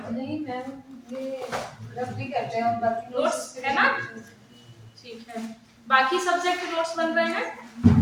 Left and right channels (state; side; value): identical; both; correlation 1.00